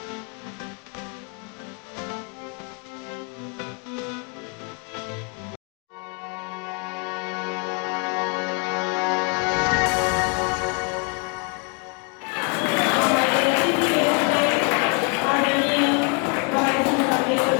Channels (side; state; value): right; quieter; 33.4 dB